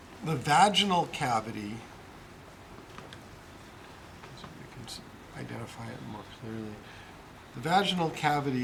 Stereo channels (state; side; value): identical; both; correlation 1.00